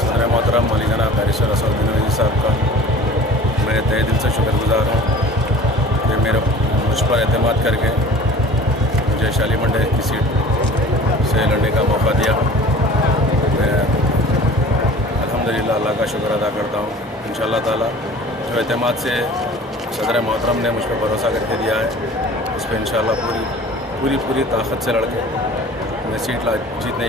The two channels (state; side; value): normal; both; correlation 0.44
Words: सदर मोहतरम मौलाना दारिस रसूलुद्दीन अवैसी साहब का मैं तहे दिल से शुक्रगुजार हूँ कि मुझ पर एतमाद करके मुझे शालीमंडे की सीट से लड़ने का मौका दिया। मैं अल्हम्दुलिल्लाह अल्लाह का शुक्र अदा करता हूँ। इंशाअल्लाह ताला जो एतमाद से सदर मोहतरम ने मुझ पर भरोसा करके दिया है, उस पर इंशाअल्लाह पूरी ताकत से लड़के मैं सीट जीतने